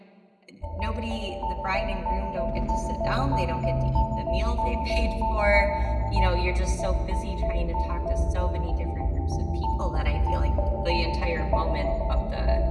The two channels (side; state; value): both; identical; correlation 1.00